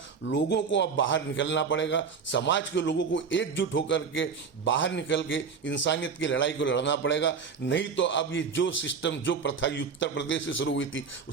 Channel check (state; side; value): quieter; left; 5.7 dB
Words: लोगों को अब बाहर निकलना पड़ेगा, समाज के लोगों को एकजुट होकर के बाहर निकल के इंसानियत की लड़ाई को लड़ना पड़ेगा। नहीं तो अब ये जो सिस्टम, जो प्रथा उत्तर प्रदेश से शुरू हुई थी,